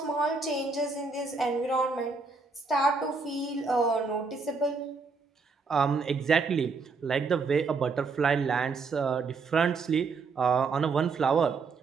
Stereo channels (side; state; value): left; quieter; 4.5 dB